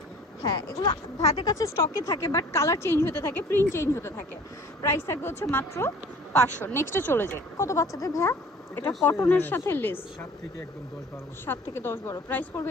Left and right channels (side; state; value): both; normal; correlation 0.48